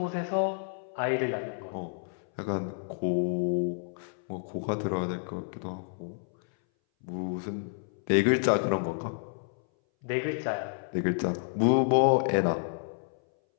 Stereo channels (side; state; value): right; silent; 58 dB below the other